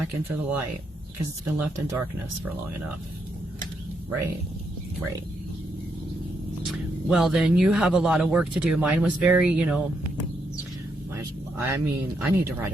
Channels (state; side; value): normal; both; correlation 0.79